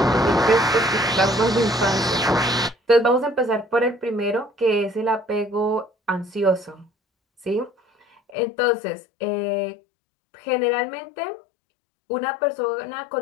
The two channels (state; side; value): drops out; right; at 8.3 s